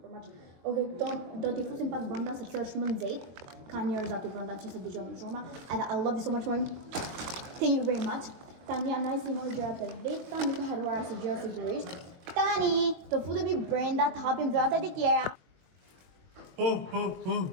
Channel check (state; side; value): late; left; 22 ms